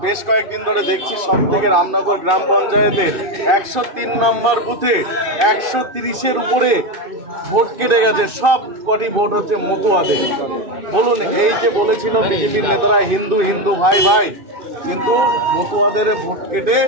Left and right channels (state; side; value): late; left; 2.5 ms